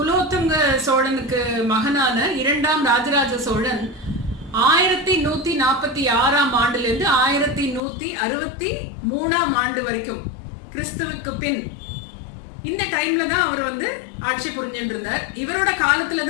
சோழனுக்கு மகனான 2ஆம் ராஜராஜ சோழன் 1146ஆம் ஆண்டுல இருந்து 1163ஆம் ஆண்டு வரைக்கும் கிறிஸ்துவுக்கு பின் இந்த டைம்ல தான் அவர் ஆட்சி புரிஞ்சுட்டு இருந்தார். இவரோட காலத்துல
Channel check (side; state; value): right; drops out; at 7.8 s